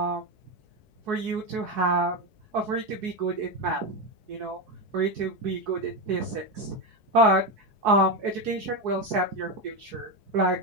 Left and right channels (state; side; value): late; left; 4.7 ms